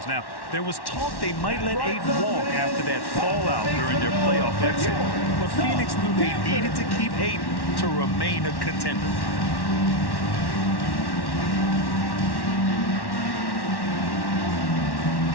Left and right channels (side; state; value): right; late; 1.1 ms